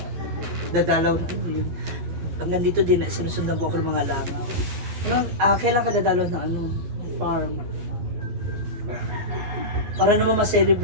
dadalaw na yun. Hanggang dito din, sinusundan ko ako ng mga langaw. Kailan ka dadalaw na farm? Para naman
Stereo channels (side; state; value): left; late; 12 ms